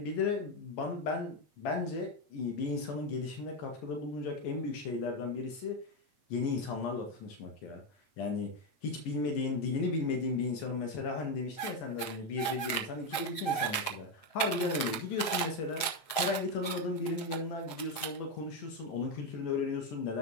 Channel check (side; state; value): right; late; 7.7 ms